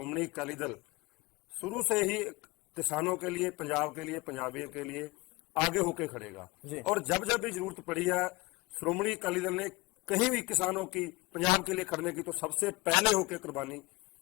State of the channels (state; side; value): quieter; right; 23.5 dB